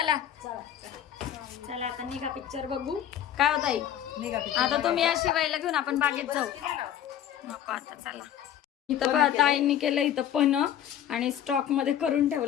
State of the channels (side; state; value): right; quieter; 10.5 dB